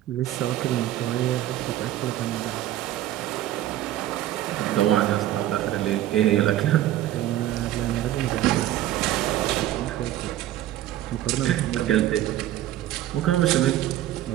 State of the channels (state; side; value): quieter; left; 13.4 dB